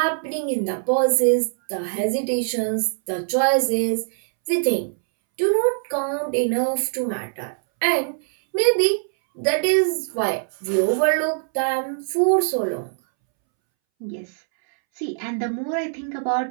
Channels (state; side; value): silent; left; 64 dB below the other